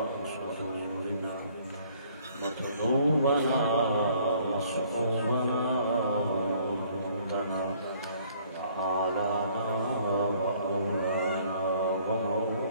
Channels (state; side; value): inverted; both; correlation -0.60